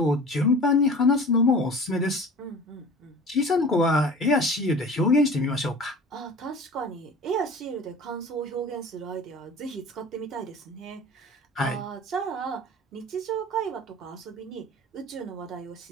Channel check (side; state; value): both; normal; correlation 0.41